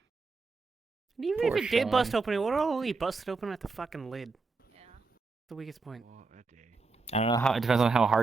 And even Poor if it did bust Sean. open, it would only busted open at the fucking lid. Yeah. The weakest point. I don't know how. It depends on how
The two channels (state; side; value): quieter; left; 4.1 dB